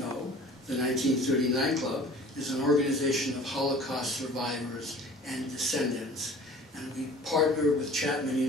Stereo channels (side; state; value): both; normal; correlation 0.46